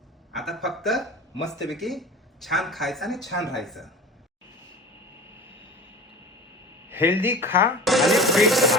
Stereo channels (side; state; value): both; normal; correlation 0.37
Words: आता फक्त मस्तपैकी छान खायचं आणि छान राहायचं. हेल्दी खा आणि फिट